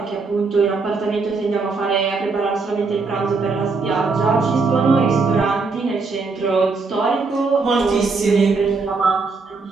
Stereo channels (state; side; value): quieter; left; 4.2 dB